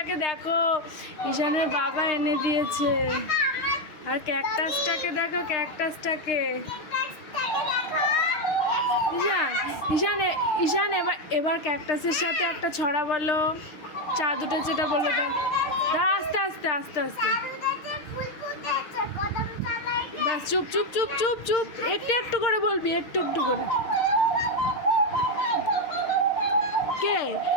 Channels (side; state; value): right; late; 6.5 ms